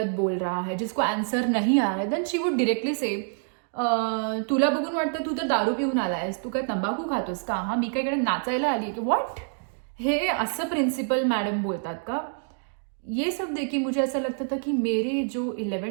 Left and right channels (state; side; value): silent; left; 60 dB below the other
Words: बोल रहा है जिसको आंसर नहीं आ रहा है, देन शी वुड डिरेक्टली से तुला बघून वाटतं तू तर दारू पिऊन आलायस, तू काय तंबाखू खातोस का, हा मी काय इकडे नाचायला आली की व्हॉट, हे असं प्रिन्सिपल मॅडम बोलतात का. ये सब देखिए मुझे ऐसा लगता था कि मेरे जो